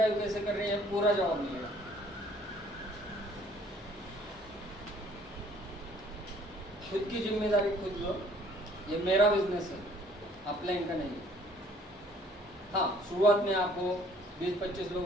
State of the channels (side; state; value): both; normal; correlation 0.58